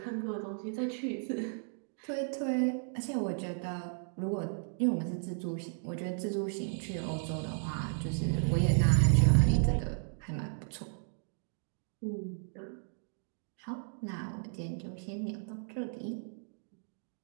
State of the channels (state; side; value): silent; left; digital silence